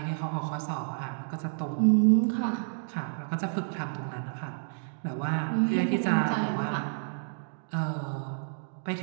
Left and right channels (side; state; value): left; silent; digital silence